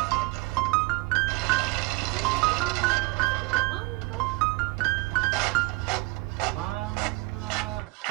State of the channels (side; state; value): left; quieter; 24.1 dB